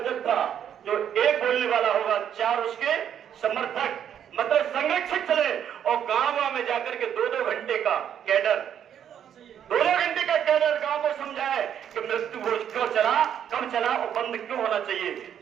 जो एक बोलने वाला होगा 4 उसके समर्थक मतलब संरक्षक चले, और गांव में जाकर के 2-2 घंटे का कैडर, 2-2 घंटे का कैडर गांव को समझाए कि मृत्यु भोज क्यों चला, कब चला और बंद क्यों होना चाहिए,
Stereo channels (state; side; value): quieter; left; 9.3 dB